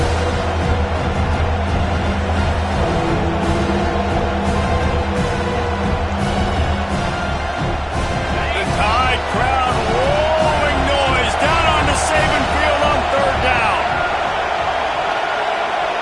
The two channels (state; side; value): identical; both; correlation 1.00